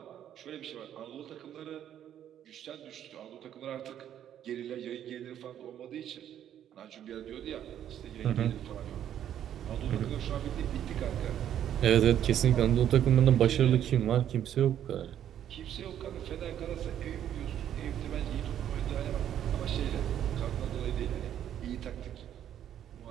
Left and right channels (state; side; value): quieter; left; 10.4 dB